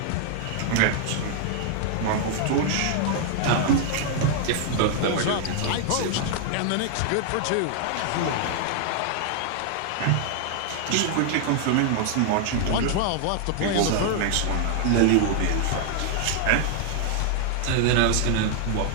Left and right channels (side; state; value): both; different; correlation 0.00